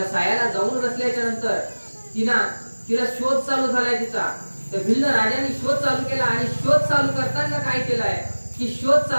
सायाला जाऊन बसल्याच्या नंतर तिला शोध चालू झालाय तिचा. त्या भिल्ल राजाने शोध चालू केला आणि शोध चालू करताना काय केलाय की शोध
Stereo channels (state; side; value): inverted; both; correlation -1.00